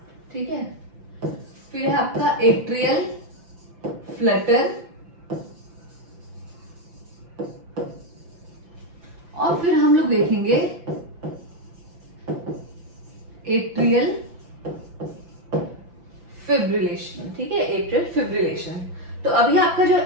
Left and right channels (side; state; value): left; late; 5.9 ms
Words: ठीक है, फिर है आपका एट्रियल फ्लटर, और फिर हम लोग देखेंगे एट्रियल फिब्रिलेशन, ठीक है, एट्रियल फिब्रिलेशन। तो अभी आपका जो